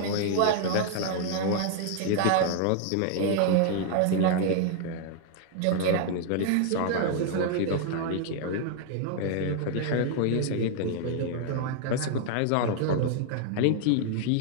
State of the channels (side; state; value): both; different; correlation 0.00